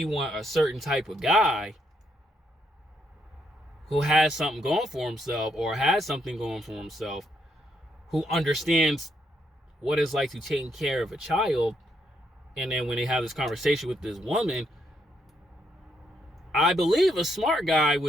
want a certain type of guy who has something going for himself or has something going for himself, who understands what it's like to take care of a child, and then when they have this conversation with this woman, I believe a smart guy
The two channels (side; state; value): both; normal; correlation 0.76